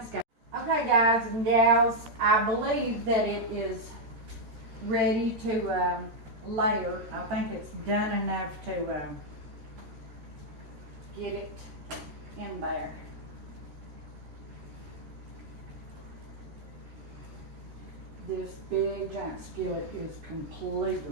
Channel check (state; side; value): late; left; 13 ms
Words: guys. Okay, guys and gals, I believe that it is ready to layer. I think it's done enough to get it in there. This big giant skillet is